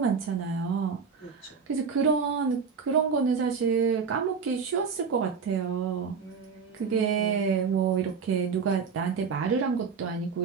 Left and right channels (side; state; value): left; quieter; 5.8 dB